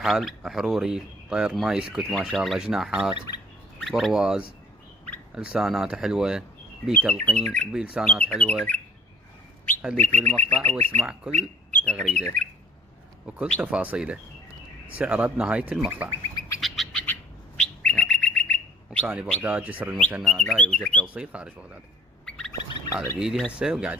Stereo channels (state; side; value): normal; both; correlation 0.56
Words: حروري، طير ما يسكت ما شاء الله، جناحات، برواز، لسانات حلوة، بي تلقين وبي لسانات حلوة. خليك بالمقطع واسمع كل تغريدة وكل تفاصيله، سعره بنهاية المقطع. مكاني بغداد، جسر المثنى، لا يوجد توصيل خارج بغداد. هذا بيدي هسه